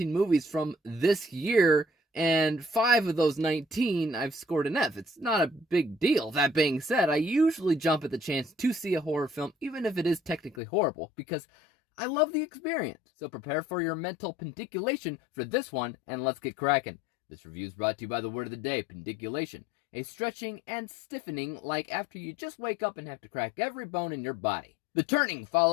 movies from this year, and 5 of those 19 I've scored an F. It's not a big deal. That being said, I usually jump at the chance to see a horror film, even if it is technically horrible, because I love the experience. So prepare for your mental pendiculation for this one, and let's get cracking. This review is brought to you by the word of the day, pendiculation. A stretching and stiffening like after you just wake up and have to crack every bone in your body. The Turning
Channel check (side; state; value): right; drops out; at 10.6 s